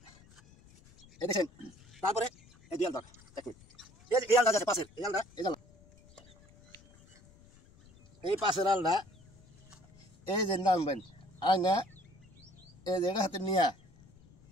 এই দেখেন তারপরে এই দুই আল ধর দেখুন, এই যে এই আলটা আছে পাশের এই আলটা, এই জাল এই পাশের আলটা এই যে নামবেন আর না এই জায়গা হাতে নিয়ে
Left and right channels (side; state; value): left; noise; rumble, 26 dB below the sound